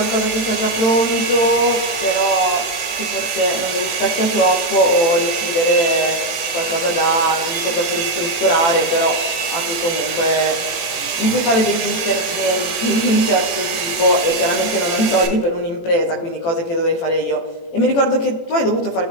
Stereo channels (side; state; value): right; late; 17 ms